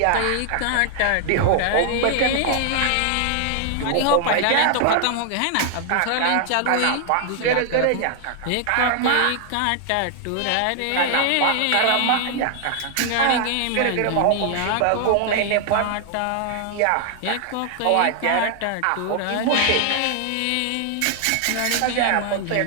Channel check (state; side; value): different; both; correlation 0.00